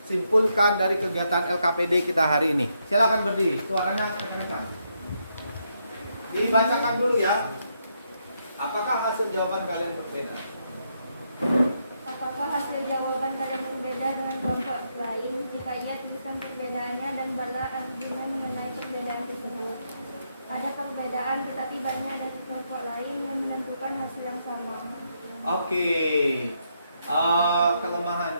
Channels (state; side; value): inverted; both; correlation -0.79